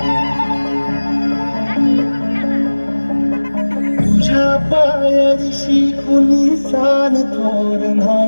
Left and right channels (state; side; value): inverted; both; correlation -1.00